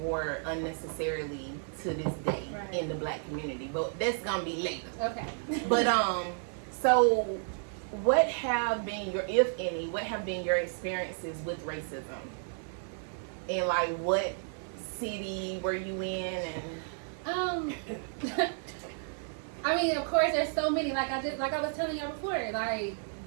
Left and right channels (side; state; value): left; silent; 56 dB below the other